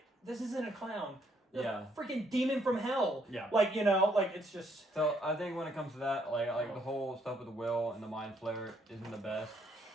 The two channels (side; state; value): both; normal; correlation 0.70